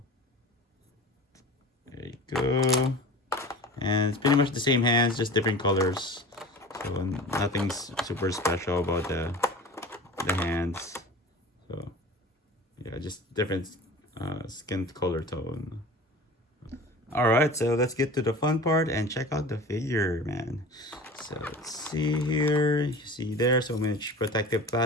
there you go. And it's pretty much the same hands, just different colors. So nothing's super special about the hands. So yeah, just different skin color tone. All right, so let's get to the fun part and check out the figure, man. So let's see here. You see there, so much protective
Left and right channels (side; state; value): both; normal; correlation 0.37